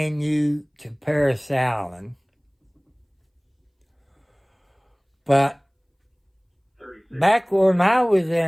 you to Paris Allen. But back when I was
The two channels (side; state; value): both; identical; correlation 1.00